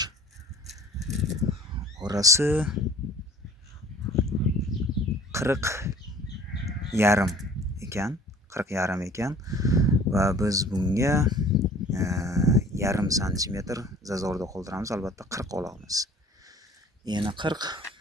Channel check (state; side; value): normal; both; correlation 0.49